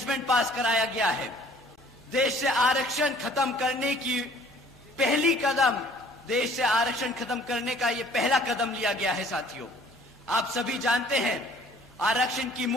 पास कराया गया है। देश से आरक्षण खत्म करने का ये पहला कदम लिया गया है। साथियों, आप सभी जानते हैं आरक्षण की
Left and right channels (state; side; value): normal; both; correlation 0.55